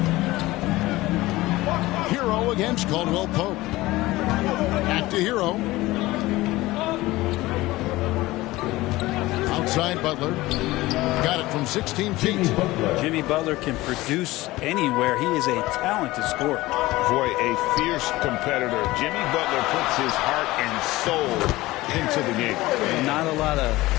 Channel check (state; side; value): quieter; right; 18.7 dB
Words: Hero against Caldwell Pope. Back to Hero. Outside Butler. Got it from 16 feet. Jimmy Butler can produce anywhere. He is a talented scorer. Boy, a fierce competitor. Jimmy Butler puts his heart and soul into the game. Not a lot of